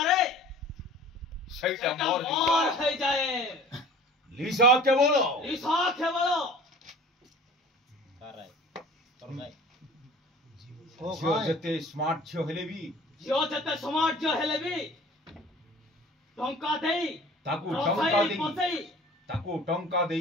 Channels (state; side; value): normal; both; correlation 0.45